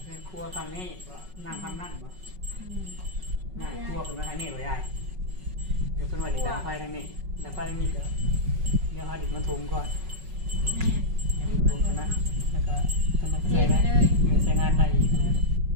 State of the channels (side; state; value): left; late; 5.4 ms